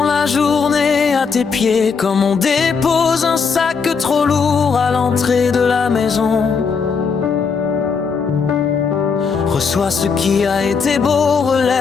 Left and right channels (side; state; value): right; quieter; 5.5 dB